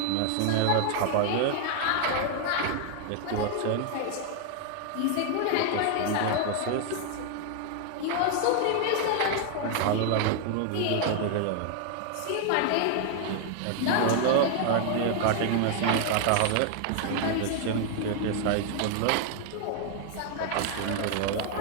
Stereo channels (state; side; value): different; both; correlation 0.00